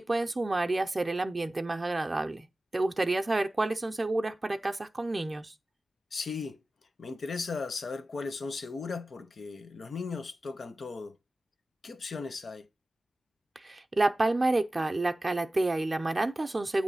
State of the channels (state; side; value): normal; both; correlation 0.96